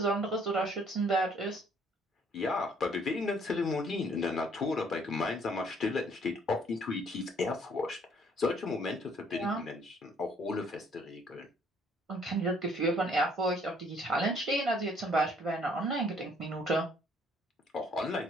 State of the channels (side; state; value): both; normal; correlation 0.62